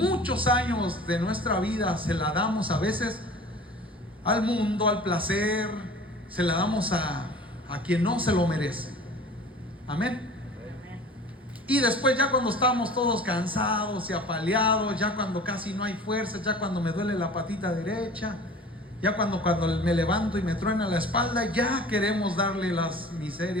años de nuestra vida, se la damos a veces al mundo, al placer, se la damos a quien no se lo merece. Amén. Y después, ya cuando estamos todos cansados y apaleados, ya cuando casi no hay fuerza, ya cuando me duele la patita derecha, ya cuando me levanto y me truena la espalda, ya queremos darle las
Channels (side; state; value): both; normal; correlation 0.43